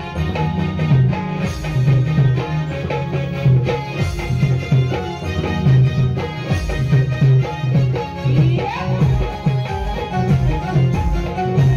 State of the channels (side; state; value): both; identical; correlation 1.00